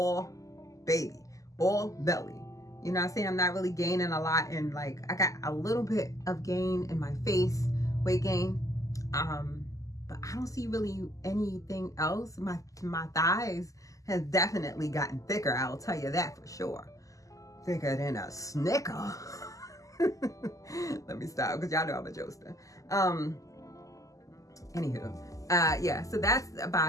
baby, all belly. You know what I'm saying? I'm not really gaining a lot, and like I got a little bit of gain in my face, weight gain. But I don't see really anything else. My thighs has definitely gotten thicker, I'll tell you that for sure. Thicker than a Snicker. Let me stop, because y'all know I'm a jokester. Anywho, yeah, so that's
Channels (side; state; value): right; late; 0.16 ms